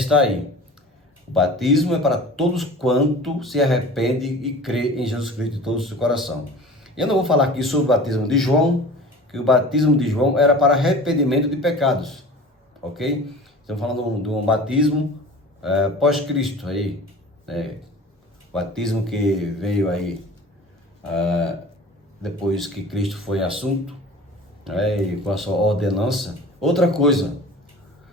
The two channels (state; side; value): normal; both; correlation 0.40